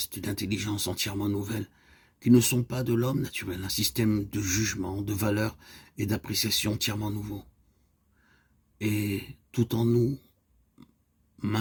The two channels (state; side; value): identical; both; correlation 1.00